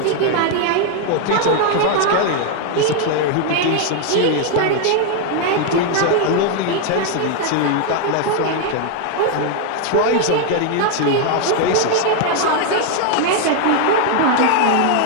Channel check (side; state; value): both; different; correlation 0.01